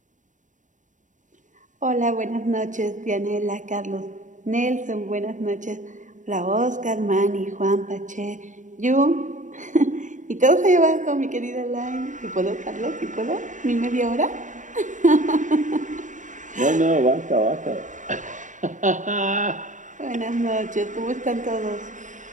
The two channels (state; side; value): late; left; 0.37 ms